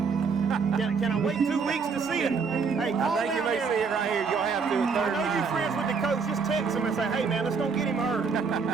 Can I wait 2 weeks to see it? Hey, call I think you may see it right here. You'll have to. I know you friends with the coach. Just text him and say, hey, man, let's don't get him hurt.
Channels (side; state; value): left; quieter; 5.3 dB